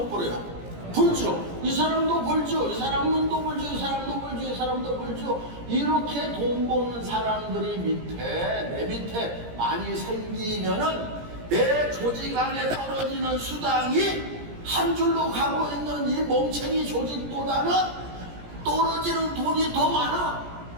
벌어요? 벌죠. 이 사람도 벌죠. 이 사람은 또 벌죠. 이 사람도 벌죠. 이 사람도 벌죠. 이렇게 돈 버는 사람들이 내 밑에 많이 생기면은 내 조직 안에 떨어지는 수당이 한 줄로 가고 있는 이 멍청이 조직보다는 떨어지는 돈이 더 많아.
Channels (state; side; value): late; left; 17 ms